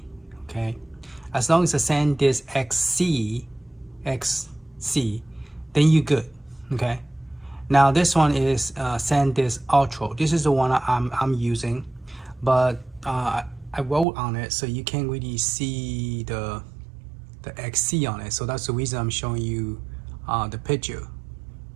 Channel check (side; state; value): left; drops out; at 14.1 s